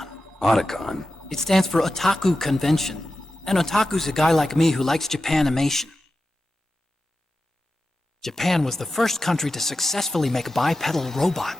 Otacon? It stands for Otaku Convention. An otaku's a guy like me who likes Japanimation. Japan was the first country to successfully make bipedal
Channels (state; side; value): normal; both; correlation 0.92